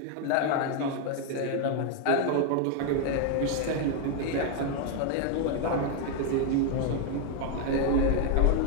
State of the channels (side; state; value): both; different; correlation 0.01